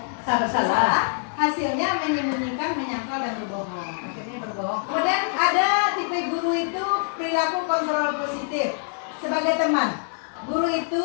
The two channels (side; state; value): right; silent; 62 dB below the other